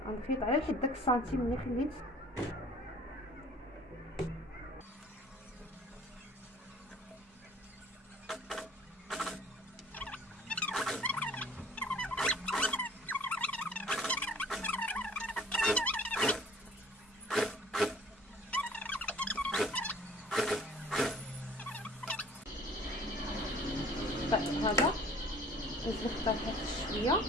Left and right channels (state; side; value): normal; both; correlation 0.50